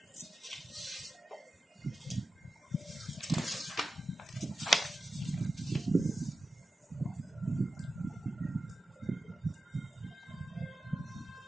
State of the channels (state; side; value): normal; both; correlation 0.92